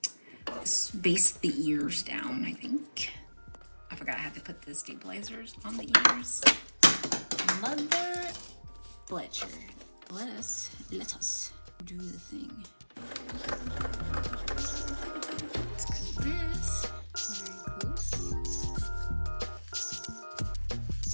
let's base the ears down, I think. I forgot I had to put the stabilizers on the ears. Mother Fletcher. Let us do the thing. Let's cut this very close.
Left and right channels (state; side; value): inverted; both; correlation -1.00